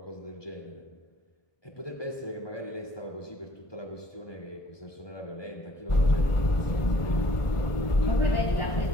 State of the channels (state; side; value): late; right; 1.4 ms